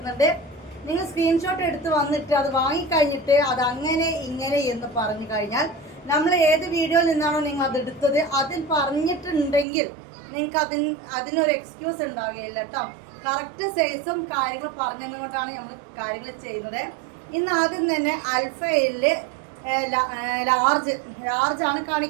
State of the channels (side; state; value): left; drops out; at 9.7 s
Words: നിങ്ങൾ സ്ക്രീൻഷോട്ട് എടുത്ത് വന്നിട്ട് അത് വാങ്ങിക്കഴിഞ്ഞിട്ട് അത് അങ്ങനെ ഇങ്ങനെ എന്ന് പറഞ്ഞു കഴിഞ്ഞാൽ നമ്മൾ ഏത് വീഡിയോയിൽ നിന്നാണോ നിങ്ങൾ അത് എടുത്തത് അതിൽ പറഞ്ഞിട്ടുണ്ടെങ്കിൽ നിങ്ങൾക്ക് അതിനൊരു എക്സ്ക്യൂസ് ഉണ്ടാവുകയില്ല കേട്ടോ. കറക്റ്റ് സൈസും കാര്യങ്ങൾ പറഞ്ഞതുകൊണ്ടാണ് നമ്മൾ കാര്യങ്ങൾ ചെയ്യുന്നത്. ഇന്ന് ആദ്യം തന്നെ അൽഫയിൽ ലാർജാണ്